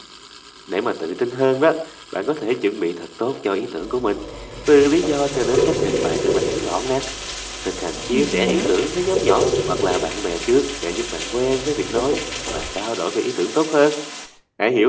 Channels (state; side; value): identical; both; correlation 1.00